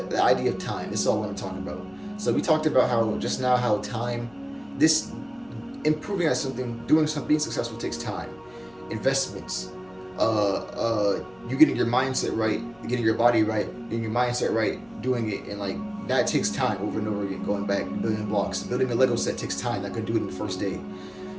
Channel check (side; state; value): left; noise; hum, 28 dB below the sound